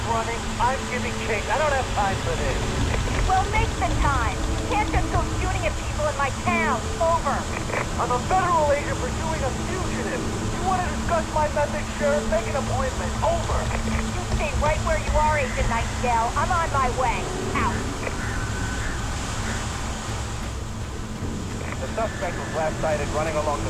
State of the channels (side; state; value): both; identical; correlation 1.00